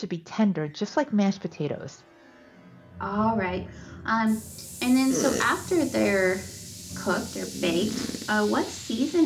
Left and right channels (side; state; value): both; identical; correlation 1.00